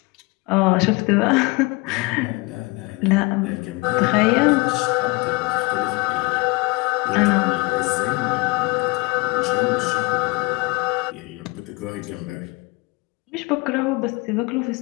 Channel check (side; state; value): right; quieter; 26.5 dB